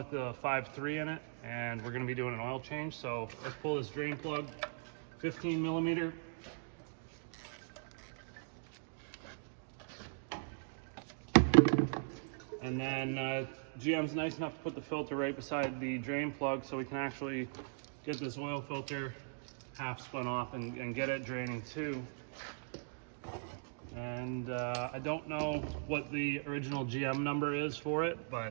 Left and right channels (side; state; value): left; silent; digital silence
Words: the 5.3 in it, and we're going to be doing an oil change. So let's pull this drain plug, 15 millimeter. And then GM's nice enough to put the filter right beside the drain plug so we can actually get this oil filter half spun off and get it draining too. And I don't know what the original GM number is for it,